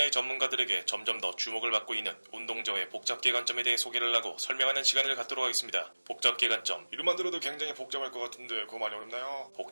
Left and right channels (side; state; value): both; inverted; correlation -1.00